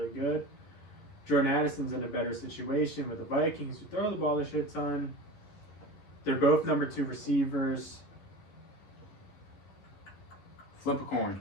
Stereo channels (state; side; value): late; right; 11 ms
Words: good. Jordan Addison's in a better situation with the Vikings, who throw the ball a shit ton. They're both number 2 receivers. Flip a